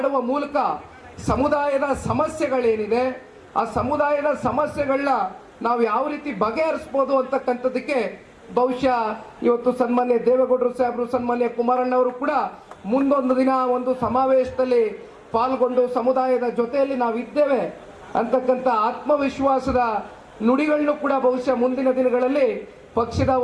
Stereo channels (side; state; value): both; identical; correlation 1.00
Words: ಮೂಲಕ ಸಮುದಾಯದ ಸಮಸ್ಯೆಗಳೇನಿದೆ ಆ ಸಮುದಾಯದ ಸಮಸ್ಯೆಗಳನ್ನ ನಾವು ಯಾವ ರೀತಿ ಬಗೆಹರಿಸ್ಬೋದು ಅಂತಕ್ಕಂಥದ್ದಕ್ಕೆ ಬಹುಶಃ ಇವತ್ತು ಸನ್ಮಾನ್ಯ ದೇವೇಗೌಡರು ಸಾಹೇಬರು, ಸನ್ಮಾನ್ಯ ಕುಮಾರಣ್ಣವರು ಕೂಡ ಮುಂದೊಂದು ದಿನ ಒಂದು ಸಮಾವೇಶದಲ್ಲಿ ಪಾಲ್ಗೊಂಡು ಸಮುದಾಯದ ಜೊತೆಯಲ್ಲಿ ನಾವಿದ್ದೇವೆ ಅಂತಕ್ಕಂಥ ಆತ್ಮವಿಶ್ವಾಸದ ನುಡಿಗಳನ್ನು ಕೂಡ ಬಹುಶಃ ಮುಂದಿನ ದಿನಗಳಲ್ಲಿ ಪಕ್ಷದ